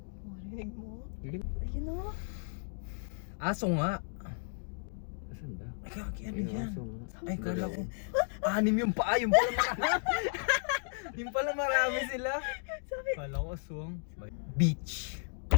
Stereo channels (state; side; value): silent; right; digital silence